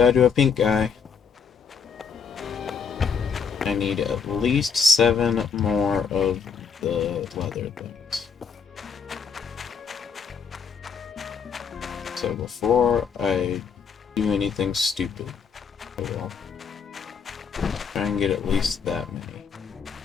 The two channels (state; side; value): quieter; right; 6.2 dB